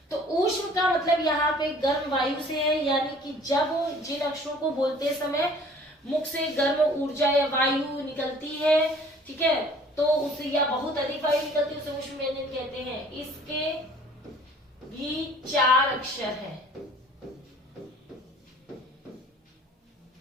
तो ऊष्म का मतलब यहाँ पे गर्म वायु से है, यानी कि जब जिन अक्षरों को बोलते समय मुख से गर्म ऊर्जा या वायु निकलती है, ठीक है, तो उससे या बहुत अधिक वायु निकलती है, उसे ऊष्म व्यंजन कहते हैं। इसके भी 4 अक्षर हैं,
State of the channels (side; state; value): both; normal; correlation 0.52